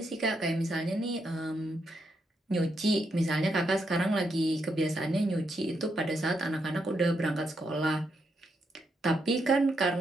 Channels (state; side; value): normal; both; correlation 0.80